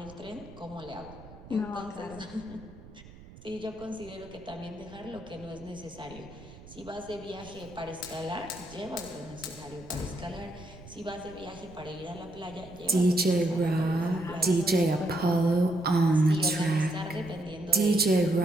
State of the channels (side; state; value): right; noise; rumble, 19 dB below the sound